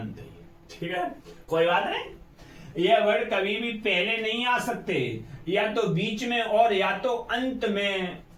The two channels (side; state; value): both; identical; correlation 1.00